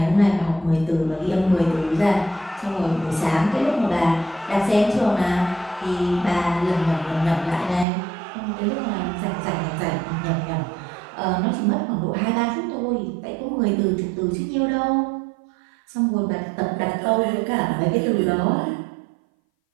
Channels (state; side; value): drops out; left; at 7.9 s